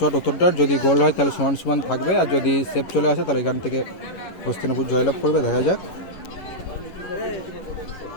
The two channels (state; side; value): late; right; 11 ms